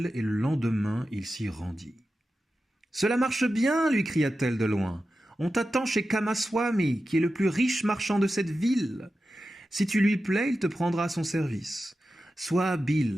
et le lendemain, il s'y rendit. « Cela marche bien, lui cria-t-elle de loin. On t'attend chez Kamaswami, qui est le plus riche marchand de cette ville. Si tu lui plais, il te prendra à son service. Sois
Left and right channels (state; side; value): normal; both; correlation 0.92